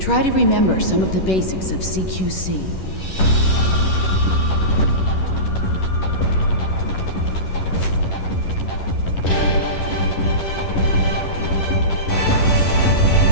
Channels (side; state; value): right; late; 11 ms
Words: to remember some of the basics of CQC.